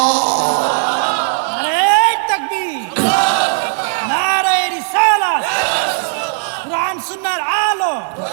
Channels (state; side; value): silent; left; digital silence